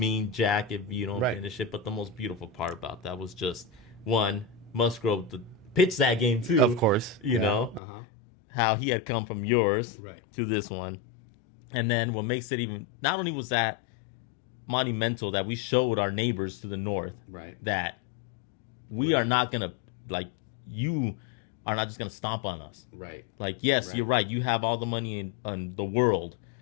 jack if you don't Right. finish it. But the most beautiful part about that was just, one, Musgrove to pitch that game too. Of course. You know? Uh-huh. How he had come from yours Right. to this one. And then what makes it even, not only was that monumental that we showed our neighbors to the north Right. that we We're are not- not going to, you are not just going to stomp on us. Right. Like, yes, Right. you're right. You have all the money in the world.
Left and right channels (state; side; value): drops out; right; at 7.8 s